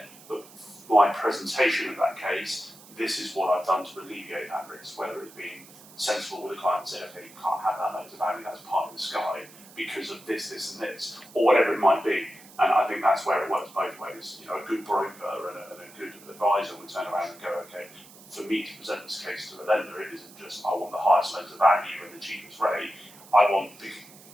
but my presentation of that case, this is what I've done to alleviate that risk, whether it's being sensible with the client and saying, okay, you can't have that loan to value, that's part of the sky because of this, and this, or whatever it might be. And I think that's where it works both ways. A good broker and a good advisor would turn around and go, okay, for me to present this case to a lender, it isn't just I want the highest loan to value and the cheapest rate. I want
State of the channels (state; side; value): noise; right; hiss, 21 dB below the sound